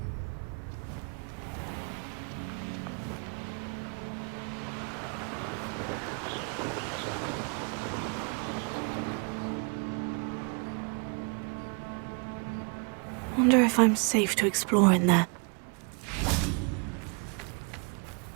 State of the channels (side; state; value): left; quieter; 36.7 dB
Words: Wonder if I'm safe to explore in there.